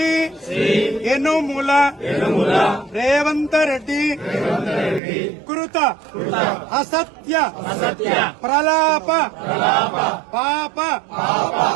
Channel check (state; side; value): drops out; left; at 5.0 s